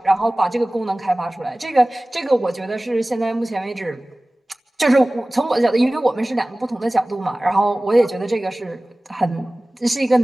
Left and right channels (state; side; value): normal; both; correlation 0.98